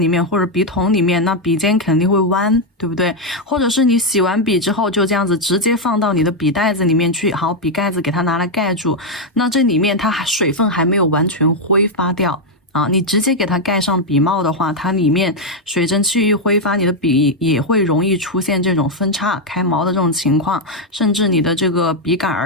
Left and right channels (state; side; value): normal; both; correlation 0.02